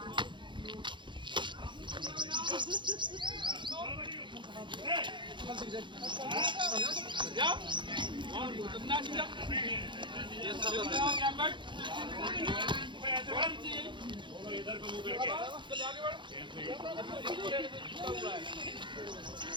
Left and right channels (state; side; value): late; left; 0.23 ms